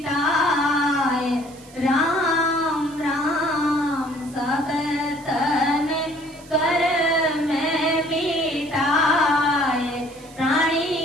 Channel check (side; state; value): right; noise; hiss, 23 dB below the sound